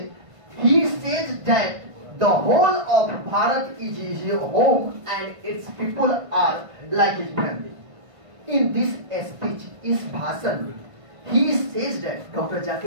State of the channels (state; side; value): late; left; 1.5 ms